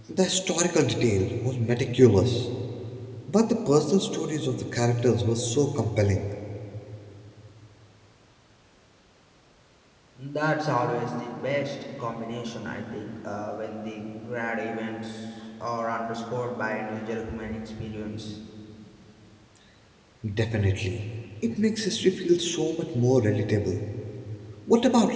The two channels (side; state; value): both; identical; correlation 1.00